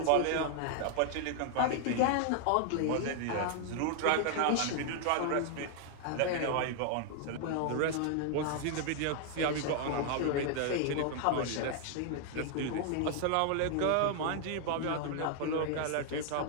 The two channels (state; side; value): different; both; correlation 0.00